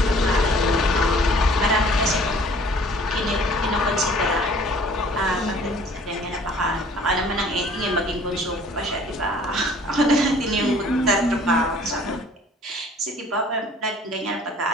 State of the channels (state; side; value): normal; both; correlation 0.53